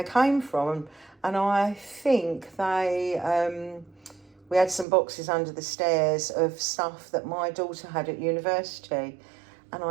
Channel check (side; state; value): left; drops out; at 4.9 s